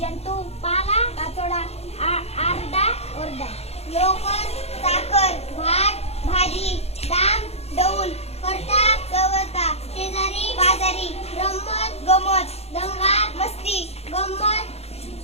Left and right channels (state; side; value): late; right; 0.30 ms